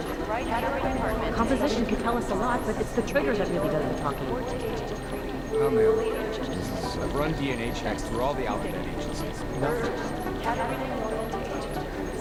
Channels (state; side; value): identical; both; correlation 1.00